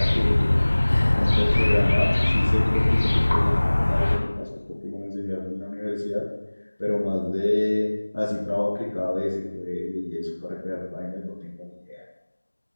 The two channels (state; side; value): inverted; both; correlation -1.00